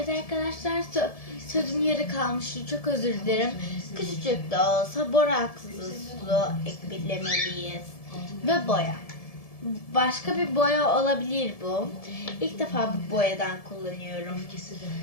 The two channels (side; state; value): right; late; 1.7 ms